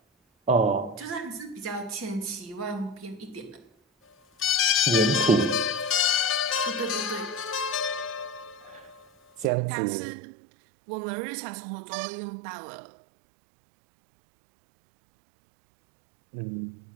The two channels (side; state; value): left; drops out; at 9.5 s